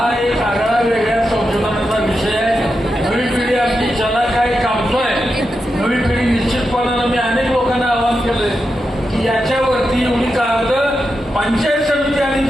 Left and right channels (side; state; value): both; normal; correlation 0.88